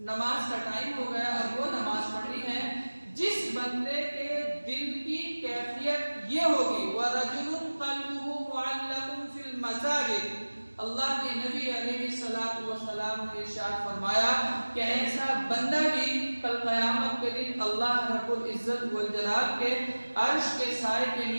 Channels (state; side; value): inverted; both; correlation -1.00